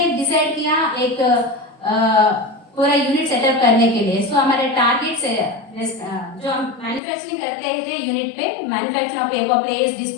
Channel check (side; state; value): right; drops out; at 7.0 s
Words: डिसाइड किया एक पूरा यूनिट सेटअप करने के लिए। सो हमारे टारगेट से जो हम मैन्युफैक्चरिंग करते थे यूनिट पे, manufacture of paper plates,